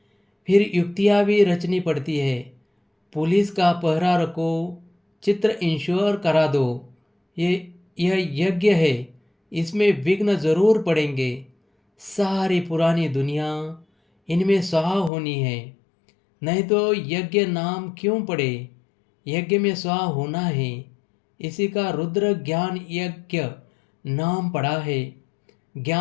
फिर युक्तियाँ भी रचनी पड़ती है। पुलिस का पहरा रखो, चित्र इंश्योर करा दो। यह यज्ञ है, इसमें विघ्न जरूर पड़ेंगे। सारी पुरानी दुनिया इनमें स्वाहा होनी है, नहीं तो यज्ञ नाम क्यों पड़े। यज्ञ में स्वाहा होना है, इसी का रुद्र ज्ञान यज्ञ नाम पड़ा है।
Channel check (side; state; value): right; drops out; at 15.1 s